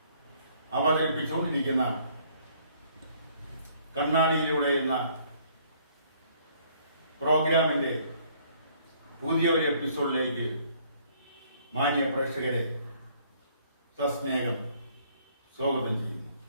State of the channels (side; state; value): both; inverted; correlation -0.62